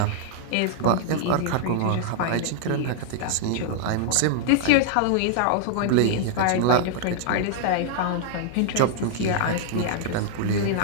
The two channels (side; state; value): both; different; correlation -0.01